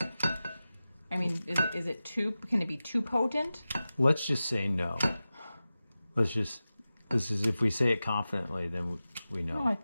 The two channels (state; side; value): inverted; both; correlation -0.95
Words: I mean, is it too, can it be too potent? Let's just say no. This is, if we say it confidently, then we know. No, I